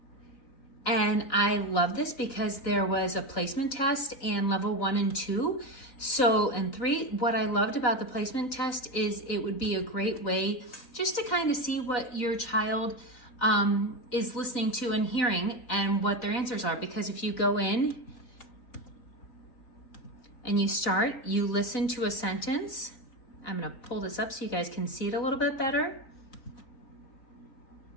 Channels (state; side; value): late; right; 4.1 ms